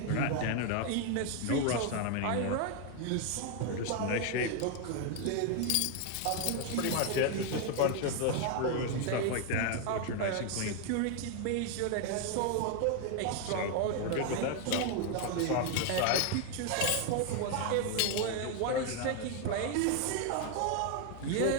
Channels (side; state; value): both; different; correlation 0.01